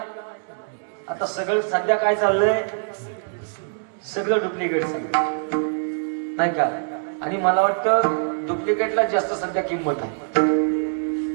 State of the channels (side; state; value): left; silent; 63 dB below the other